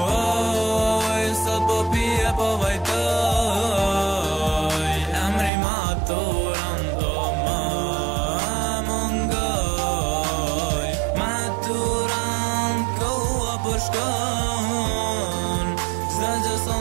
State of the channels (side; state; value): left; drops out; at 5.5 s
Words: sot po pije po vajtoj, emri maturan do më mungoj. Maturan koha po shkon, s'da që